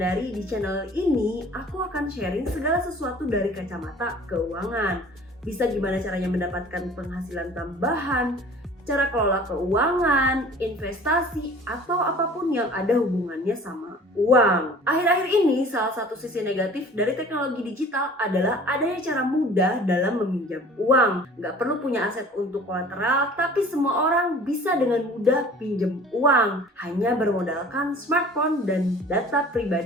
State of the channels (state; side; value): normal; both; correlation 0.47